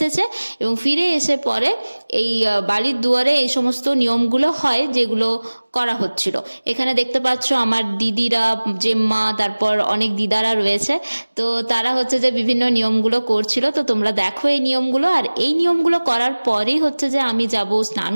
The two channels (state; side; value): inverted; both; correlation -1.00